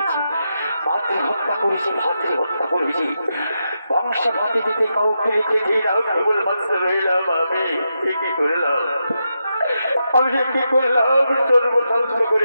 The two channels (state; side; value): inverted; both; correlation -0.86